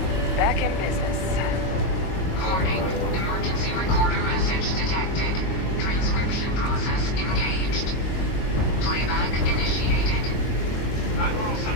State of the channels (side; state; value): right; late; 22 ms